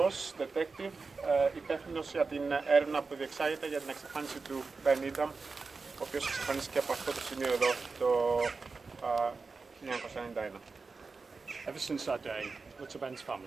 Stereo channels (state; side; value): quieter; left; 4.3 dB